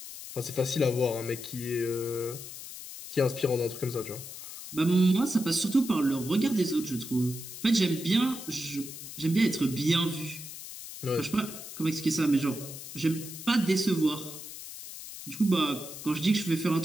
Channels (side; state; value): left; noise; hiss, 11 dB below the sound